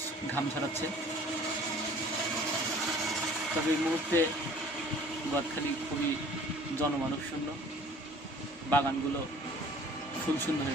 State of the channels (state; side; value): normal; both; correlation 0.50